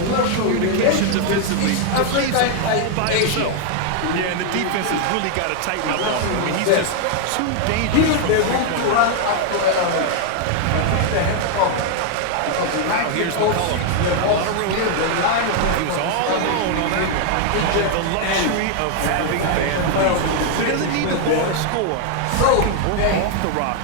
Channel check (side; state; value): both; different; correlation 0.00